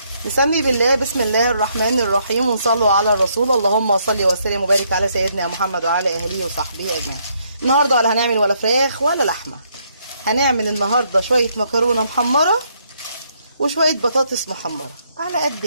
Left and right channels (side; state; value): both; inverted; correlation -0.72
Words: نسمي بالله، بسم الله الرحمن الرحيم، ونصلوا على الرسول. اللهم صل وسلم وبارك على سيدنا محمد وعلى اهله وصحبه اجمعين. النهارده ولا هنعمل ولا فراخ ولا لحمه، هنعمل النهارده شويه مكرونه محمره وشويه بطاطس محمره على